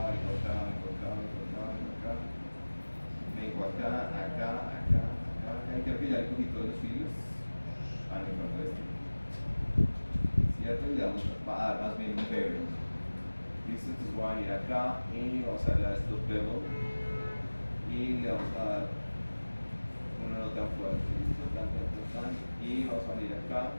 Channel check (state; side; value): inverted; both; correlation -1.00